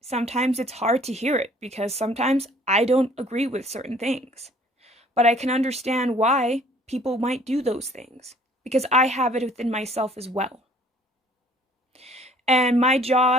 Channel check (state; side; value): normal; both; correlation 0.56